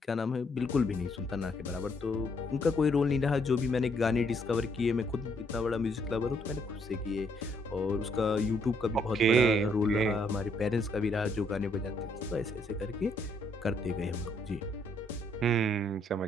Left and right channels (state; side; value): normal; both; correlation 0.70